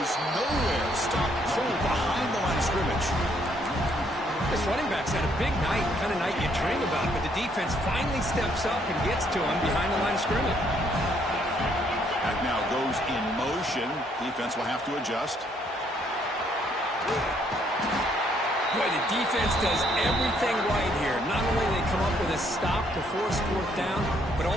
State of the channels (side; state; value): both; normal; correlation 0.69